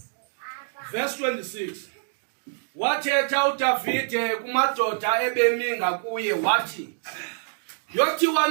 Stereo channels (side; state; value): left; silent; digital silence